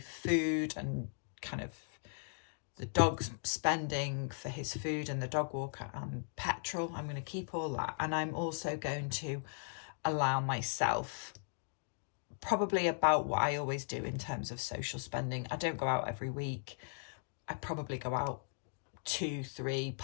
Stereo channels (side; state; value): right; silent; digital silence